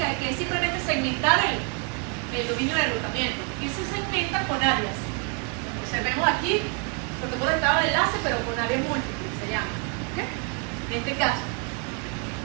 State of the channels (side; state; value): left; quieter; 36.4 dB